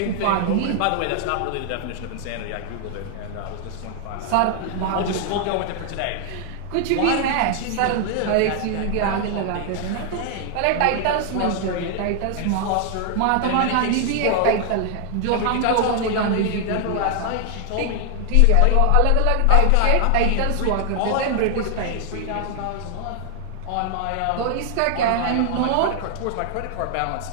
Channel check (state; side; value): different; both; correlation 0.00